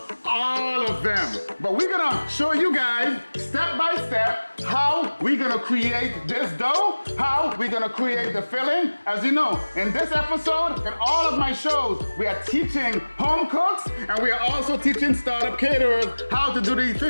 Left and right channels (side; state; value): both; inverted; correlation -1.00